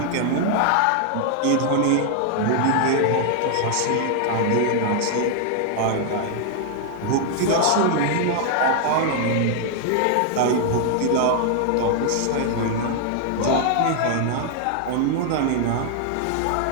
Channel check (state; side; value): different; both; correlation 0.00